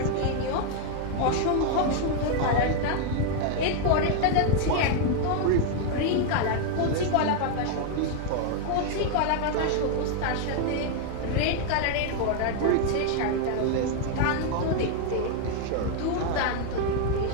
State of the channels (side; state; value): both; different; correlation 0.00